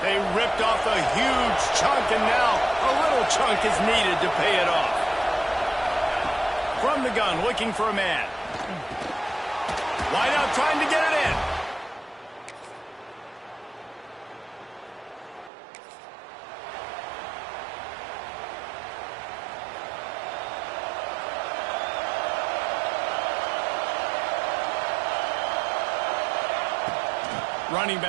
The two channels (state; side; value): drops out; left; at 15.5 s